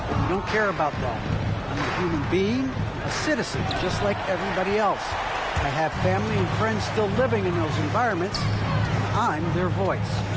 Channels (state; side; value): identical; both; correlation 1.00